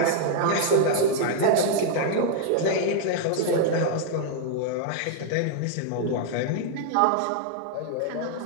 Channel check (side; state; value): both; different; correlation -0.01